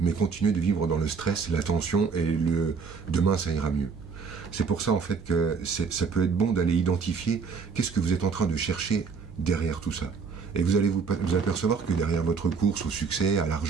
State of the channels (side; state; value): left; quieter; 5.5 dB